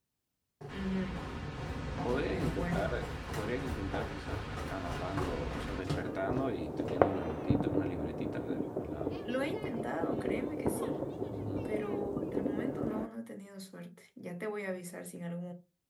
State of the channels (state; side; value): identical; both; correlation 1.00